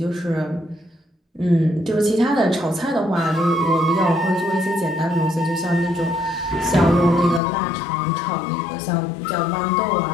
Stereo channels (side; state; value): right; drops out; at 7.4 s